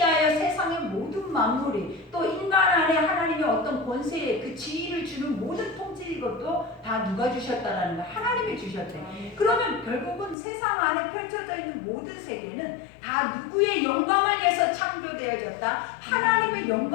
세상의 모든 만물이 또 인간 안에 하나님의 어떤 권세에 그 지위를 주는 모든 통치 이것도 다 누가 주셨다라는 거 하나님이 주셨대. 그러면 결국은 세상 안에 펼쳐져 있는 모든 세계는 다 누구의 영광을 위해서 창조되어졌다. 하나님의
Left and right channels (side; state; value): right; drops out; at 10.4 s